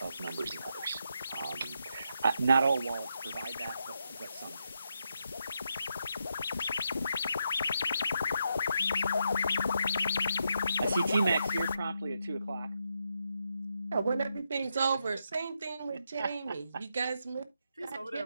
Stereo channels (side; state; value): both; inverted; correlation -0.82